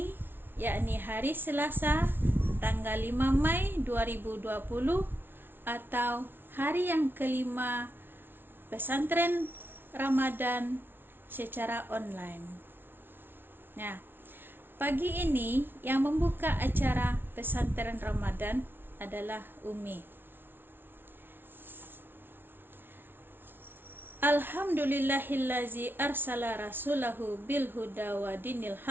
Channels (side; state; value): left; late; 0.10 ms